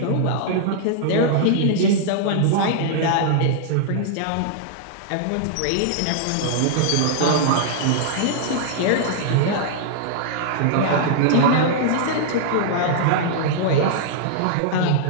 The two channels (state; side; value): different; both; correlation -0.01